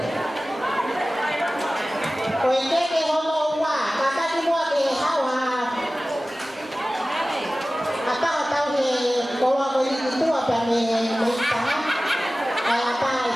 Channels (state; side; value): normal; both; correlation 0.97